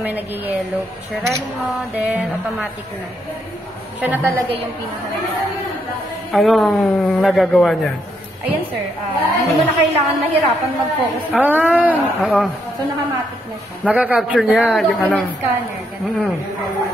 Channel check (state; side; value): normal; both; correlation 0.76